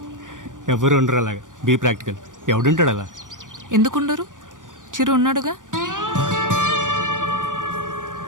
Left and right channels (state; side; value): late; left; 0.88 ms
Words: ఎవరు ఉండరు అలాగా. Be practical. ఎవడుంటాడు అలా? ఎందుకుండరు? చిరు ఉన్నాడుగా.